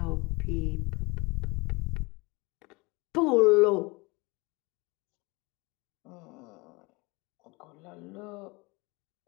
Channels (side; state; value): right; quieter; 25.8 dB